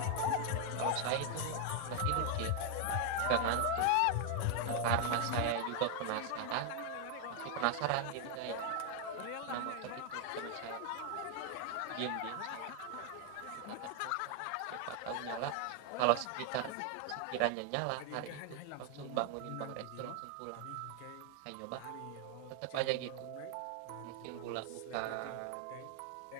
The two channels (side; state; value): both; different; correlation 0.00